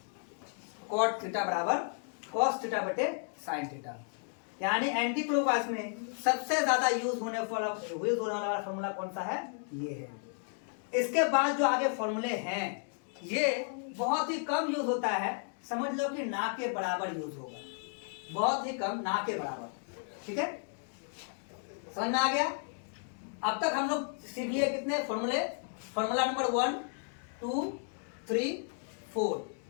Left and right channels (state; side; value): silent; right; 55 dB below the other